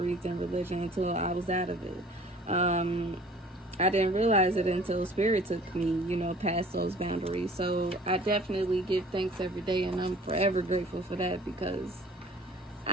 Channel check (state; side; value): normal; both; correlation 0.49